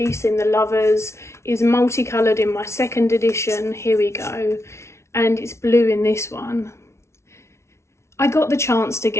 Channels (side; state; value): right; late; 0.13 ms